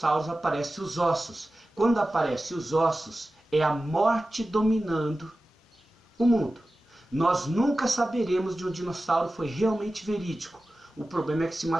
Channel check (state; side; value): normal; both; correlation 0.95